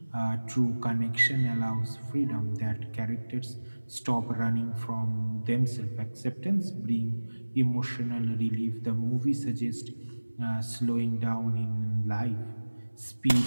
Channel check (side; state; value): both; inverted; correlation -1.00